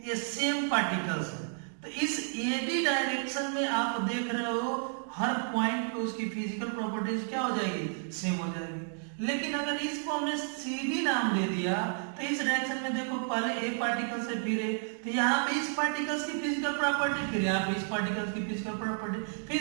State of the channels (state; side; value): silent; left; 56 dB below the other